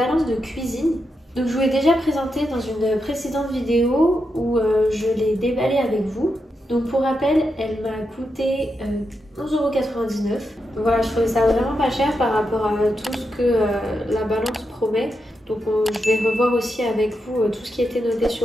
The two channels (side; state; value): both; normal; correlation 0.85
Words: de cuisine. Donc je vous l'ai déjà présentée dans une précédente vidéo où je l'ai déballée avec vous. Donc pour rappel, elle m'a coûté 11,99 €. Donc voilà, je trouvais ça vraiment pas cher par rapport à tout ce que la balance promet. Donc je vais revoir aussi avec vous tout ce qui était noté